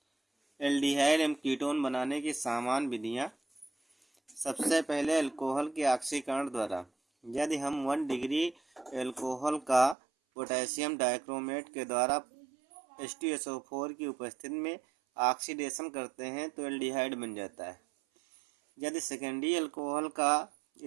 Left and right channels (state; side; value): drops out; left; at 10.0 s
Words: aldehyde एवं ketone बनाने की सामान्य विधियाँ। सबसे पहले अल्कोहल के ऑक्सीकरण द्वारा यदि हम 1 डिग्री अल्कोहल का पोटेशियम डाइक्रोमेट के द्वारा H2SO4 की उपस्थिति में ऑक्सीडेशन करते हैं तो एल्डिहाइड बन जाता है। यदि सेकेंडरी अल्कोहल का